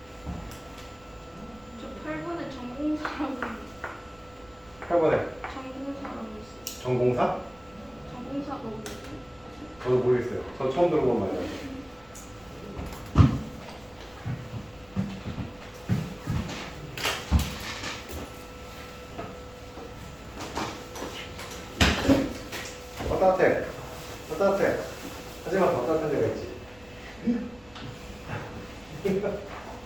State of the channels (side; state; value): right; noise; rumble, 26 dB below the sound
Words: 저 8번에 전공사라고 8번에 전공사라고 있어요. 전공사? 전공사가 뭐지? 저도 모르겠어요. 저 처음 들어본 말이에요. 따뜻해. 따뜻해. 하지만 더 따뜻한 데가 있지.